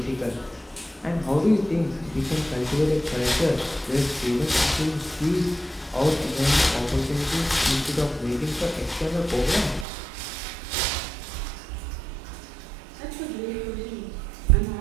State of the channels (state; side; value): drops out; left; at 9.9 s